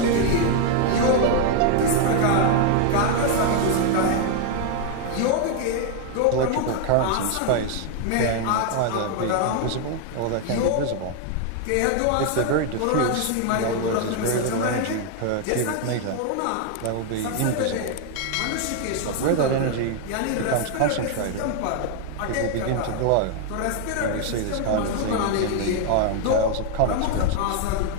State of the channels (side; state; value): both; different; correlation 0.00